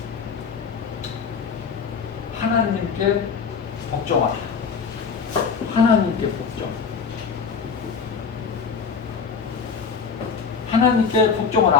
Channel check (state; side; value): quieter; right; 5.9 dB